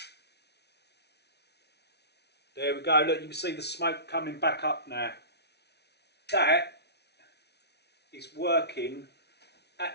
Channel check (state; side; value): late; right; 0.49 ms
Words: There we go, look, you can see the smoke coming back up now. That is working